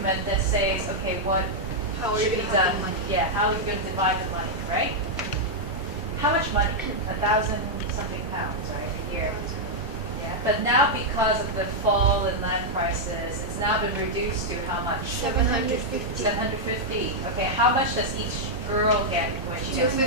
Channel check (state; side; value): normal; both; correlation -0.04